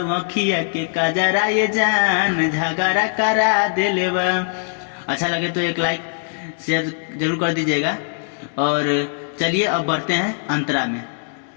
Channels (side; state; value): right; silent; digital silence